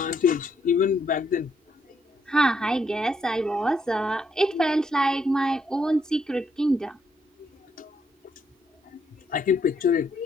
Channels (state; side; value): normal; both; correlation 0.75